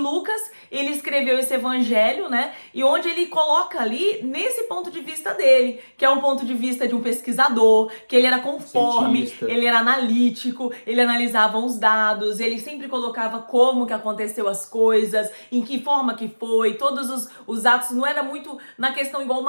ele escreveu esse evangelho, né? E onde ele coloca ali, nesse ponto de vista dele, que é um ponto de vista de um pesquisador, que ele era conforme, Cientista. ele era analítico, ele analisava os dados, ele sempre colocava como que aconteceu as coisas, em que forma que foi, todos os atos, não era muito na questão igual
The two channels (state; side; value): inverted; both; correlation -1.00